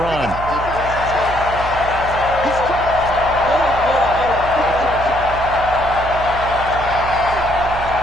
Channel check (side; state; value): right; noise; hum, 9 dB below the sound